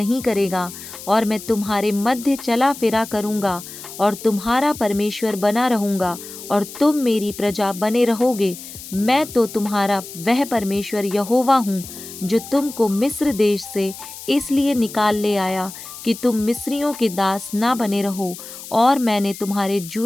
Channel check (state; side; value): noise; left; hiss, 13 dB below the sound